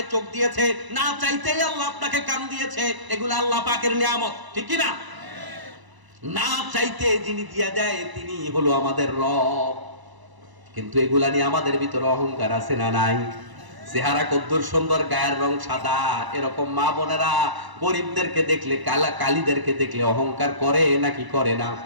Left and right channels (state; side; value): late; left; 1.0 ms